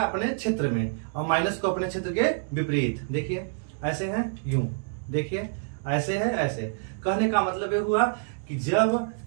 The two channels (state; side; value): silent; left; digital silence